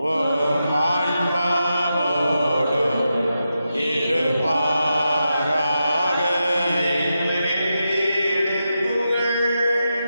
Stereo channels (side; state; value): both; inverted; correlation -0.88